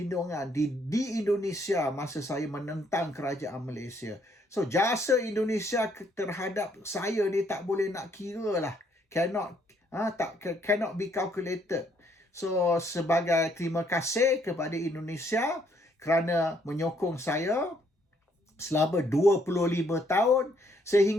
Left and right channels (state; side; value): normal; both; correlation 0.69